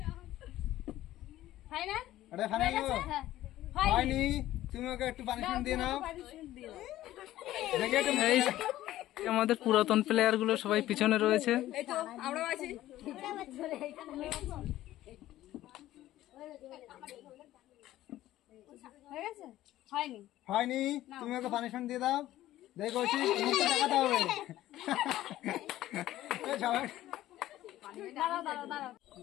হয়নি, তুমি ওকে একটু পানিশমেন্ট দিয়ে নাও। এই আমাদের পুরাতন প্লেয়ার গুলো সবাই পিছনে রয়েছে। হয়নি, তুমি ওকে পানিশমেন্ট দিয়ে দাও। দেখো মুখটা দেখাতে হবে। সবাই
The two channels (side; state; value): right; quieter; 14.5 dB